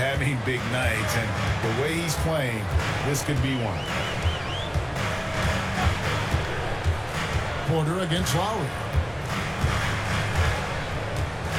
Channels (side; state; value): both; identical; correlation 1.00